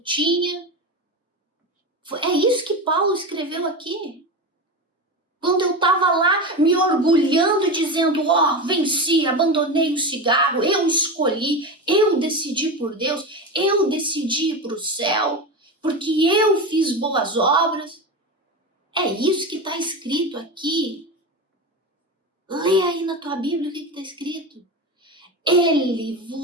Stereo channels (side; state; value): both; normal; correlation 0.22